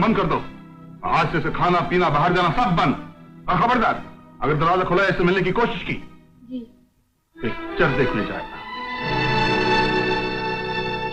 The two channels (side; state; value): both; identical; correlation 1.00